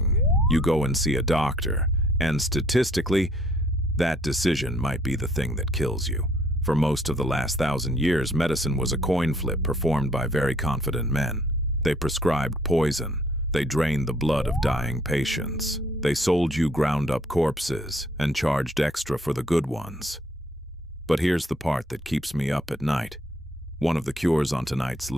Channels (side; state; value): both; normal; correlation 0.63